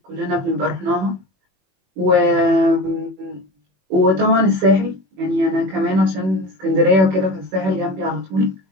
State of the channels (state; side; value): late; left; 21 ms